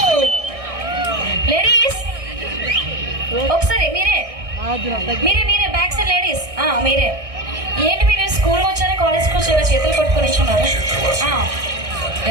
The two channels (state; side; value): late; left; 1.6 ms